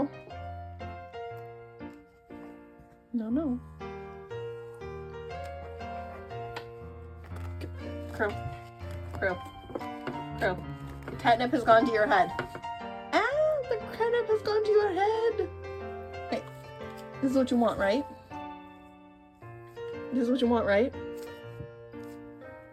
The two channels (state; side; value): identical; both; correlation 1.00